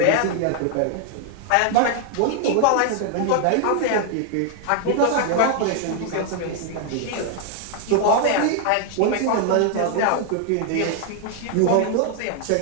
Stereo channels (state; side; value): different; both; correlation 0.00